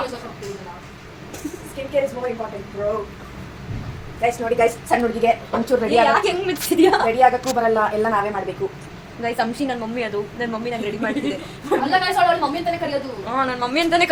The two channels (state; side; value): identical; both; correlation 1.00